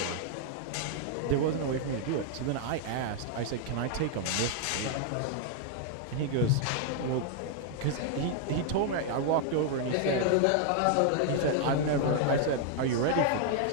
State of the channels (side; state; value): both; different; correlation 0.00